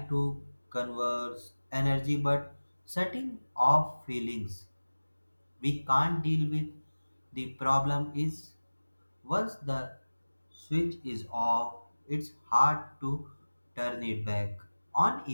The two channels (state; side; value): inverted; both; correlation -1.00